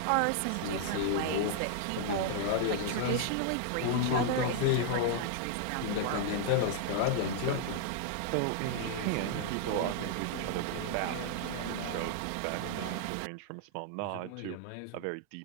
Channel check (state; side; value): different; both; correlation -0.01